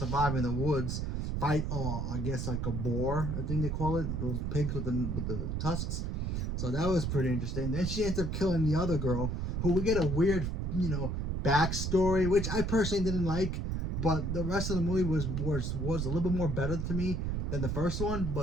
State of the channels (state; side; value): noise; right; rumble, 1 dB below the sound